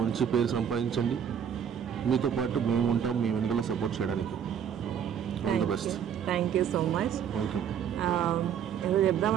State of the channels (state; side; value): quieter; left; 8.4 dB